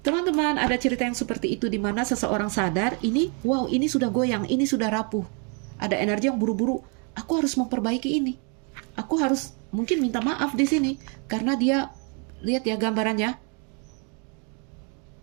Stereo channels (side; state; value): left; quieter; 37.0 dB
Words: ada cerita yang seperti itu di mana seseorang sadar, ini sudah goyang, ini sudah rapuh. Ada energi yang buru-buru, aku harus memperbaiki ini. Aku harus mungkin minta maaf di sini karena dia, lihat ya gambarannya,